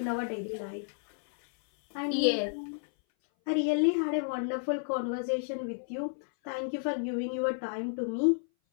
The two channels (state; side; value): silent; right; 57 dB below the other